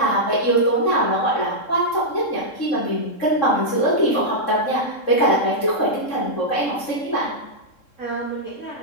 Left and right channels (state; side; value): late; right; 3.7 ms